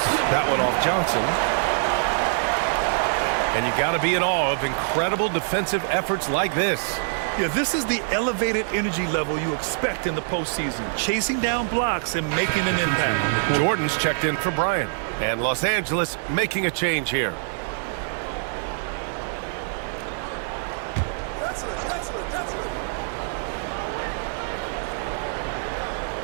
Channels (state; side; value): silent; left; digital silence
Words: That one off Johnson. And you got to be in awe of incredible defensive efforts like this. Yeah, this is the elevated energy level you expect in the postseason. Chasing down blocks and making an impact. Jordan's checked in for Bryant. And Los Angeles making a change here.